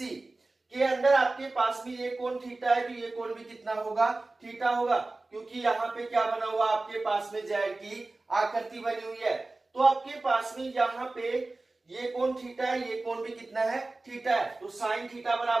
के अंदर आपके पास में ये कोण थीटा है, तो ये कोण भी कितना होगा, थीटा होगा, क्योंकि यहाँ पे क्या बना हुआ आपके पास में Z की आकृति बनी हुई है। तो आपके पास में यहाँ पे ये कोण थीटा है, ये कोण भी कितना है, थीटा है। तो साइन थीटा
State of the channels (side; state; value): left; quieter; 3.2 dB